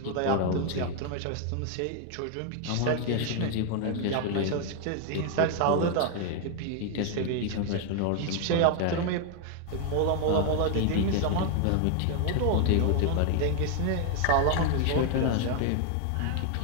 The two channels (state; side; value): different; both; correlation 0.00